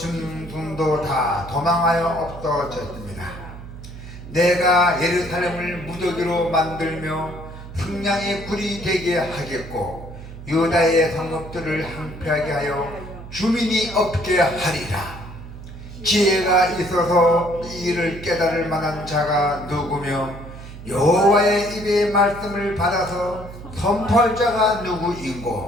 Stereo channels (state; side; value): noise; right; hum, 13 dB below the sound